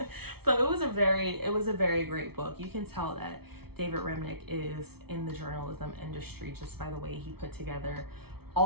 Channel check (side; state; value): left; late; 0.95 ms